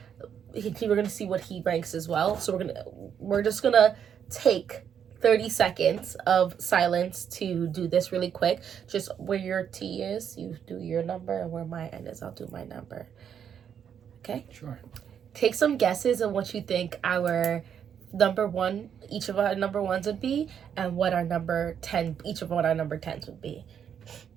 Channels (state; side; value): quieter; left; 8.3 dB